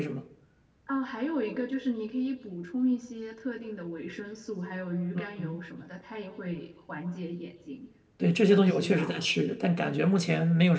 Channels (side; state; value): both; identical; correlation 1.00